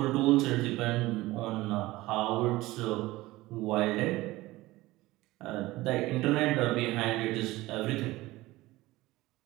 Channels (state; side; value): quieter; left; 18.7 dB